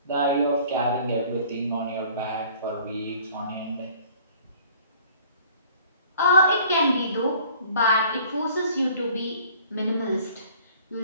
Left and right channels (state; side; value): inverted; both; correlation -0.53